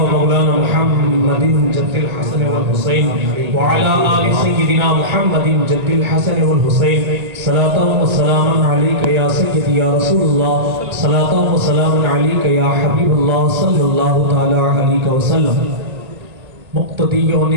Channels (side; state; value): left; late; 1.9 ms